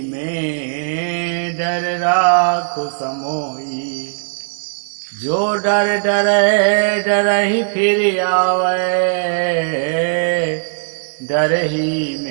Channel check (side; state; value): left; silent; digital silence